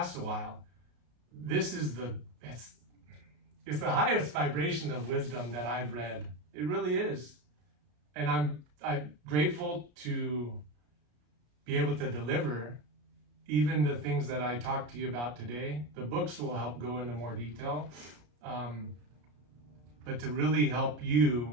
a while. This is it's the highest vibration of wisdom that I've read. It really is. And I'm grateful to be able to deliver even the things that I talked to you about today. The books will help go into more detail, but to really help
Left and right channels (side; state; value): left; late; 33 ms